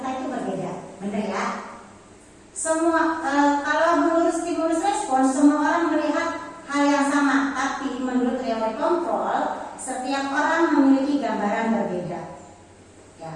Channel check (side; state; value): both; identical; correlation 1.00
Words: itu berbeda. Benar ya? Semua kalau menurut stimulus respon semua orang melihat hal yang sama, tapi menurut teori kontrol setiap orang memiliki gambaran berbeda. Ya,